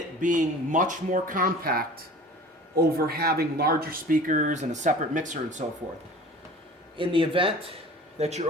being much more compact over having larger speakers and a separate mixer and so forth. In the event that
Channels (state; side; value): normal; both; correlation 0.43